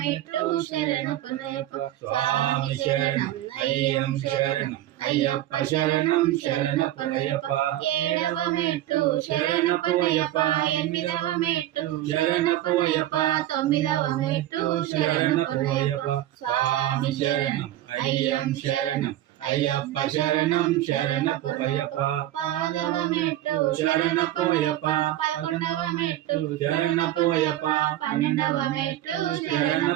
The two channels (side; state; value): left; quieter; 14.0 dB